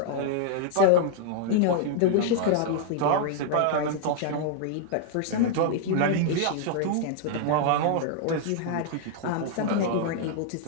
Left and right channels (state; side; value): different; both; correlation -0.01